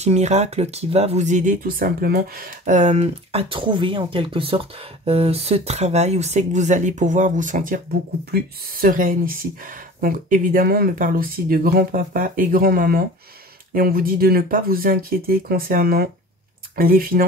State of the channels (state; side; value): normal; both; correlation 0.40